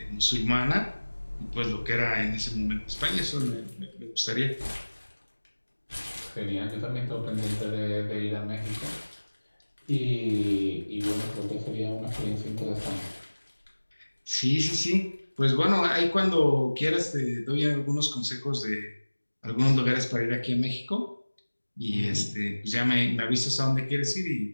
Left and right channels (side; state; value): both; inverted; correlation -1.00